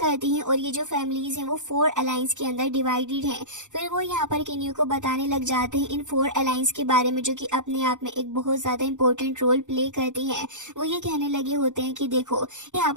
हैं और ये जो फैमिलीज हैं वो 4 अलायंस के अंदर डिवाइडेड हैं। फिर वो यहाँ पर किन्यू को बताने लग जाते हैं इन 4 अलायंस के बारे में, जो कि अपने आप में एक बहुत ज्यादा इंपॉर्टेंट रोल प्ले करती हैं। वो ये कहने लगे होते हैं कि देखो यहाँ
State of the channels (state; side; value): late; left; 0.85 ms